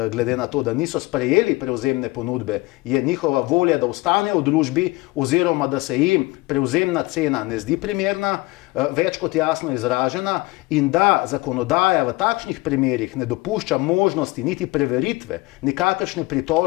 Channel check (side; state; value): right; quieter; 22.3 dB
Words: glede na to, da niso sprejeli prevzemne ponudbe, je njihova volja, da ostanejo v družbi oziroma da se jim prevzemna cena ne zdi primerna, več kot jasno izražena, in da zakonodaja v takšnih primerih ne dopušča možnosti niti preveritve, nikakršne